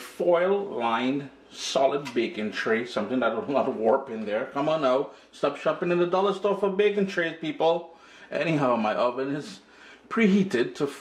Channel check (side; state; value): both; identical; correlation 1.00